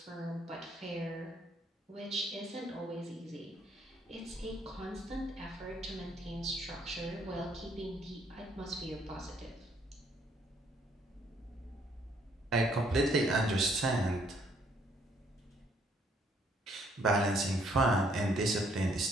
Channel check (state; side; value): normal; both; correlation 0.67